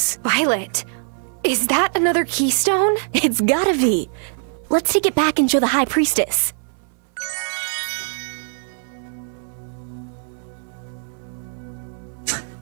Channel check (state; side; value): silent; left; 64 dB below the other